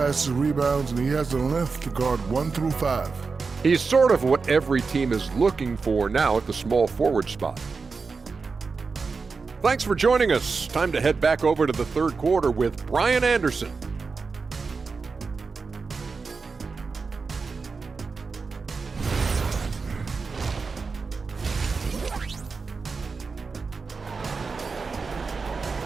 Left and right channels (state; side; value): quieter; left; 4.6 dB